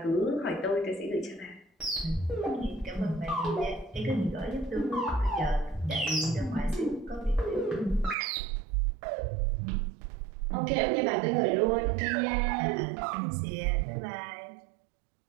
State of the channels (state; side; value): drops out; left; at 8.2 s